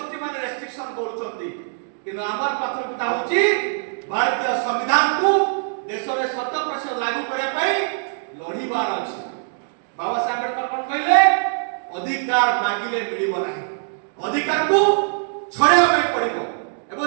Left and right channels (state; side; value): silent; left; digital silence